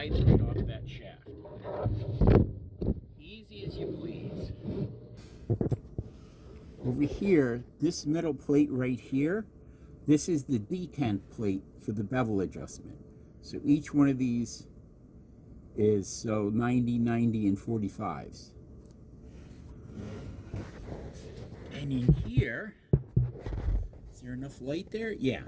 right off that shaft. Easy as you please. Over here, this metal plate right here, this is the detent plate for the bevel adjustment. So each one of these is 90, 90, and 45s. And in here, is there enough light there? Yeah.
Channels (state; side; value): identical; both; correlation 1.00